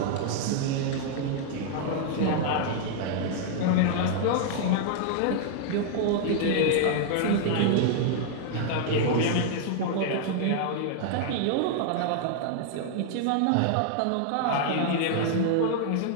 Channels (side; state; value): both; different; correlation 0.00